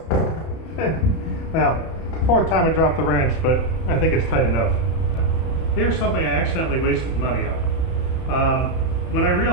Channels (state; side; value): late; right; 31 ms